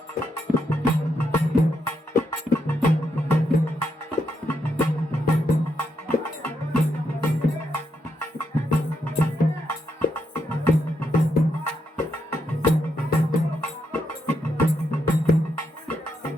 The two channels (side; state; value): both; normal; correlation 0.80